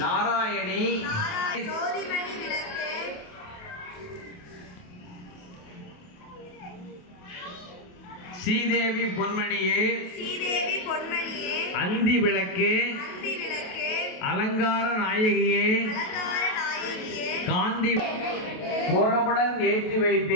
श्रीदेवी பொன்மணியே அந்தி விளக்கே அலங்கார நாயகியே காந்தி கோலமுடன் ஏற்றி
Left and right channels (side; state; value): right; late; 28 ms